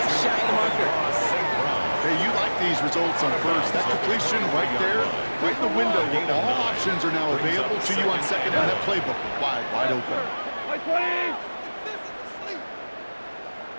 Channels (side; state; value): both; inverted; correlation -1.00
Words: shy of the marker. Hey, you like these results on first. That completion right there, right in the window where all options are now available to you on second down. That playbook wide open.